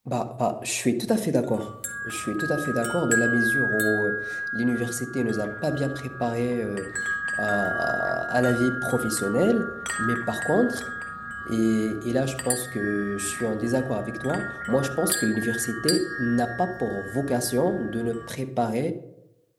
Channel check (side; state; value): both; identical; correlation 1.00